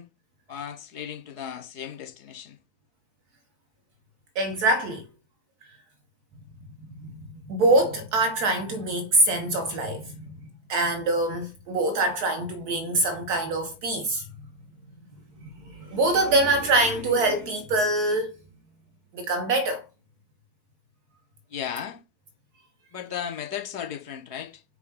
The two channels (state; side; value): late; left; 4.7 ms